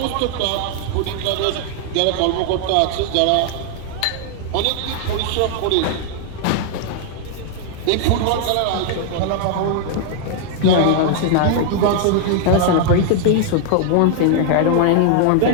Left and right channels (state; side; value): different; both; correlation 0.00